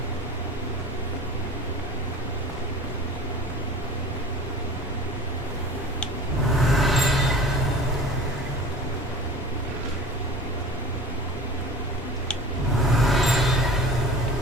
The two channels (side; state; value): both; normal; correlation 0.40